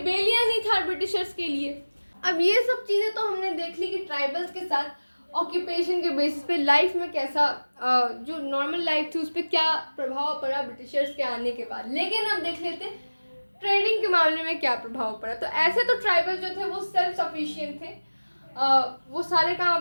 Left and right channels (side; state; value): both; inverted; correlation -1.00